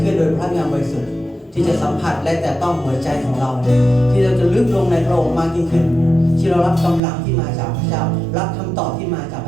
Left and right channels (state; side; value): drops out; left; at 7.0 s